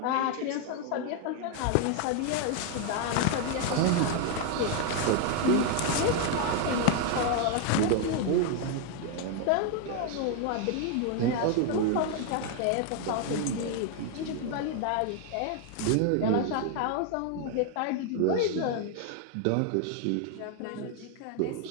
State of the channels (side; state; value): both; different; correlation 0.00